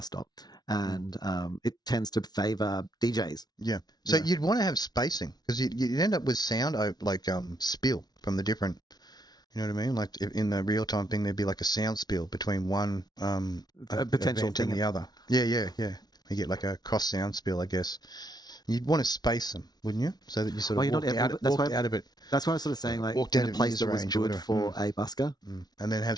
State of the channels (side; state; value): right; late; 0.19 ms